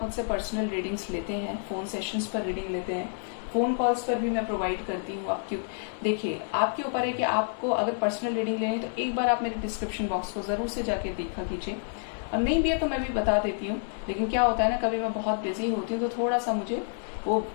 मुझसे पर्सनल रीडिंग्स लेते हैं, फोन सेशंस पर रीडिंग लेते हैं, फोन कॉल्स पर भी मैं प्रोवाइड करती हूँ। आप क्यों, देखिए आपके ऊपर है कि आपको अगर पर्सनल रीडिंग लेनी तो एक बार आप मेरे डिस्क्रिप्शन बॉक्स को जरूर से जाके देखा कीजिए। और नहीं भी है तो मैं भी बता देती हूँ, लेकिन क्या होता है ना, कभी मैं बहुत बिजी होती हूँ तो थोड़ा सा मुझे वो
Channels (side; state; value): right; silent; 59 dB below the other